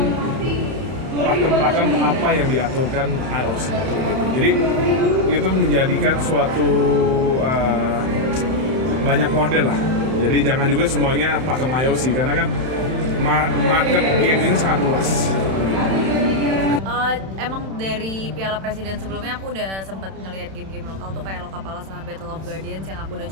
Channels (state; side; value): late; left; 31 ms